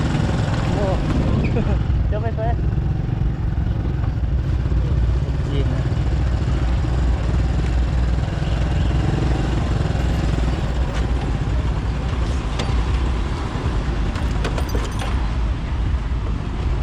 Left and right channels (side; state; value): both; identical; correlation 1.00